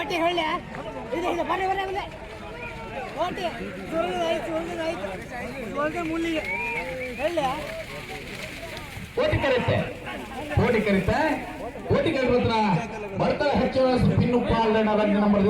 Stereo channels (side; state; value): both; identical; correlation 1.00